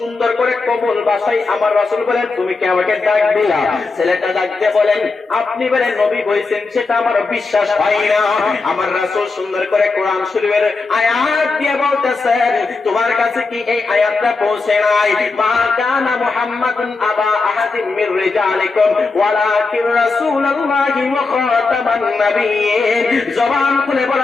করে কোমল ভাষায় আমার রাসূল বলেন তুমি কি আমাকে ডাক দিলা? ছেলেটা ডাক দিয়ে বলেন আপনি বলেন নবী হইছেন সেটা আমার বিশ্বাস হয় না। আমার রাসূল সুন্দর করে কোরআন শরীফের আয়াত দিয়ে বলতেছেন তোমার কাছে কি এই আয়াতটা পৌঁছে নাই? মা কানা মুহাম্মাদুন আবা আহাদিন মির রিজালিকুম ওয়ালাকিন রাসূলুল্লাহি ওয়া খাতামান নাবিয়্যিন। জবান খুলে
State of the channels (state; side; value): quieter; right; 4.0 dB